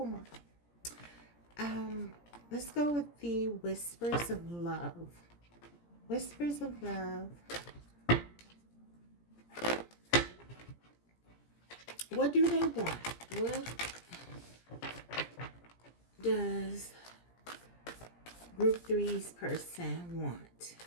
more. Let's go with the Whispers of Love. Whispers of Love. What do they want? does group three's person want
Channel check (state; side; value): late; right; 17 ms